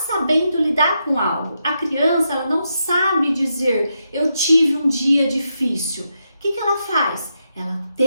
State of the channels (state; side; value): inverted; both; correlation -0.83